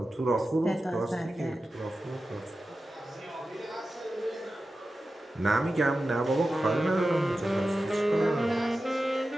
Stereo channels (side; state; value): both; normal; correlation 0.93